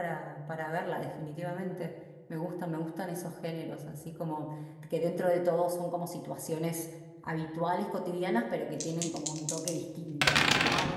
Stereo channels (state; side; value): identical; both; correlation 1.00